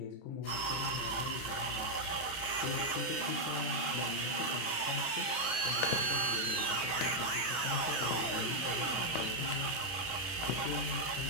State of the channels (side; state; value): right; late; 31 ms